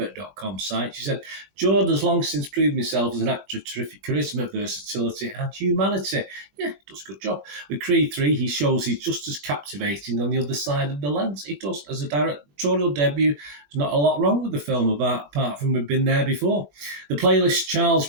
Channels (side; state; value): left; late; 21 ms